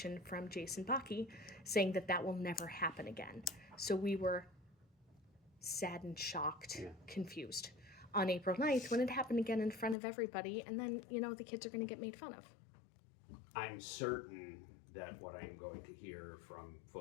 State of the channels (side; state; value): right; drops out; at 10.0 s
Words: from Jason Bakke saying that that will never happen again. So we were saddened, shocked, confused on April 9th when it happened again in front of everybody. And then, the kids are going to get made fun of. I'm certain that what I'm going to hear from